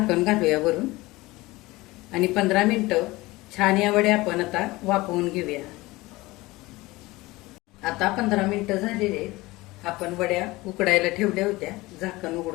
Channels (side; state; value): right; quieter; 20.5 dB